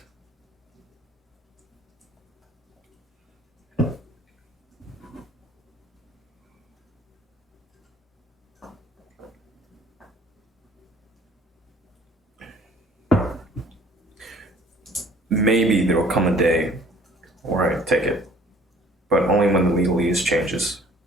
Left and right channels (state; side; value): normal; both; correlation 0.54